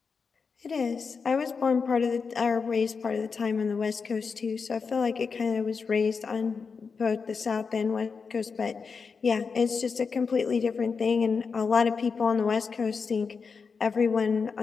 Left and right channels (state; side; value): quieter; right; 5.3 dB